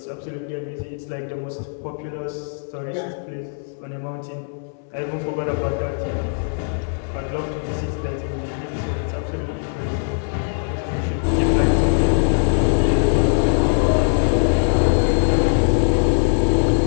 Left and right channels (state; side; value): silent; right; 65 dB below the other